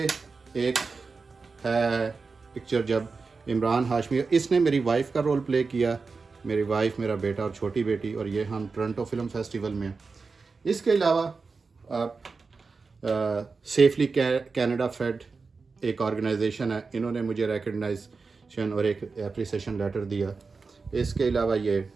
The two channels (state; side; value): quieter; left; 4.5 dB